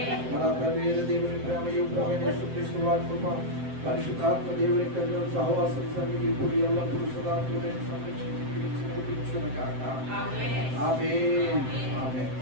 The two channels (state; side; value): late; left; 7.7 ms